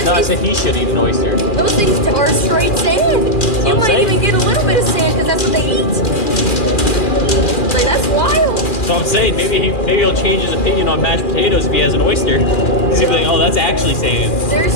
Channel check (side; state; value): right; late; 2.4 ms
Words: I said he should eat an oyster. Those things are straight sand. You might even get a little bit of sand because that's what they eat. Like, that's wild. So I'm saying maybe he'll change his opinion on mashed potatoes if he has an oyster. Because he'll be like, oh, that's actually sand. There's